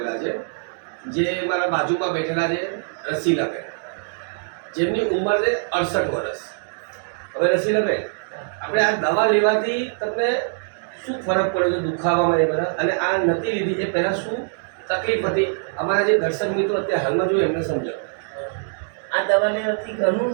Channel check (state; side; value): silent; left; digital silence